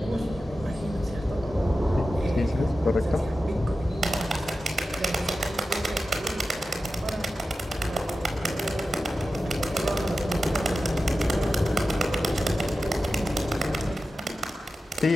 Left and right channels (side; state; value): both; normal; correlation 0.93